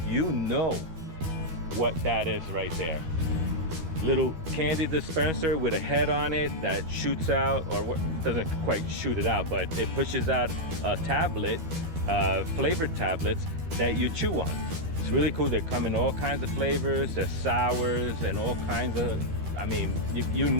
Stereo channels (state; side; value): late; left; 12 ms